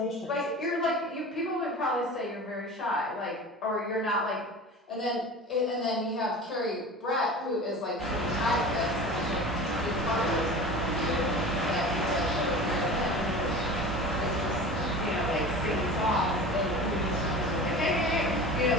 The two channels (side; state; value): both; normal; correlation 0.35